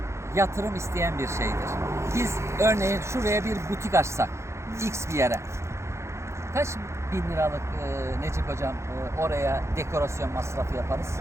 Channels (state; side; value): late; left; 0.13 ms